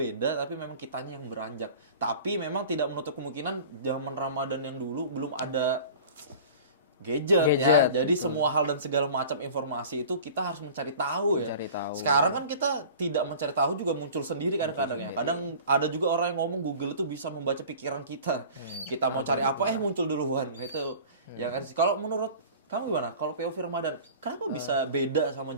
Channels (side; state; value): both; inverted; correlation -0.41